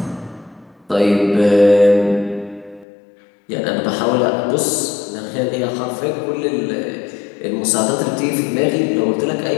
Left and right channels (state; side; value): drops out; right; at 2.9 s